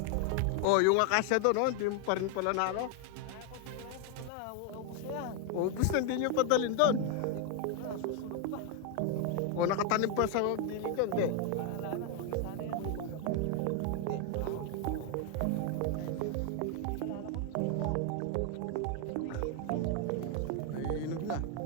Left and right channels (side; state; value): both; different; correlation 0.01